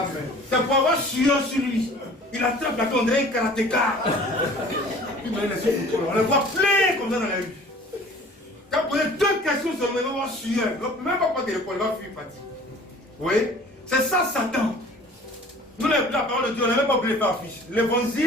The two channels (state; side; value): normal; both; correlation 0.48